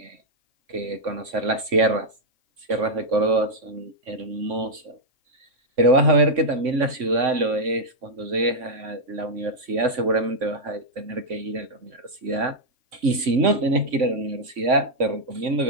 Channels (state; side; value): late; left; 3.5 ms